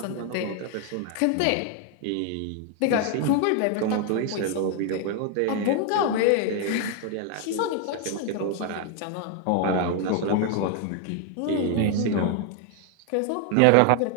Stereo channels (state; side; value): different; both; correlation 0.00